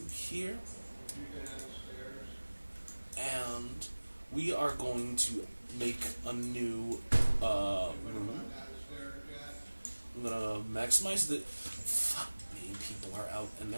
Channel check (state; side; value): inverted; both; correlation -1.00